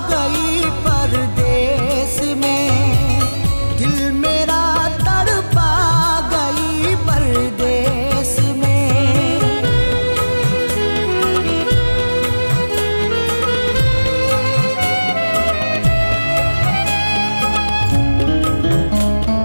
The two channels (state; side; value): inverted; both; correlation -1.00